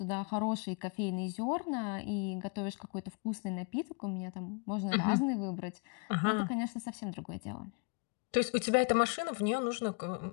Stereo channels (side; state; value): right; quieter; 35.3 dB